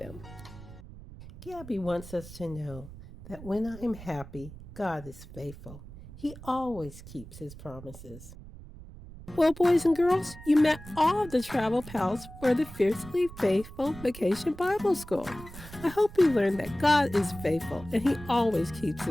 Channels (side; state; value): right; noise; rumble, 16 dB below the sound